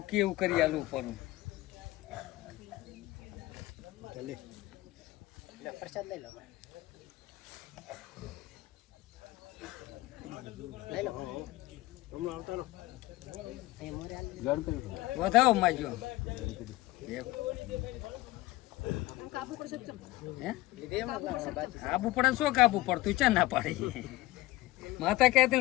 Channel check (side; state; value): right; quieter; 18.6 dB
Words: કેવું કરી આલું પરું પ્રસાદ લઈ લો વધાવો માગ્યો કાબુ પડે શું કાબુ પડતું ચા ના પાડી માતા કહેતી